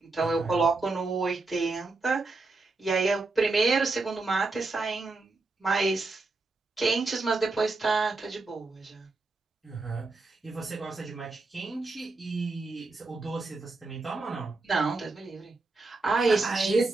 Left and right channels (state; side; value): quieter; left; 3.5 dB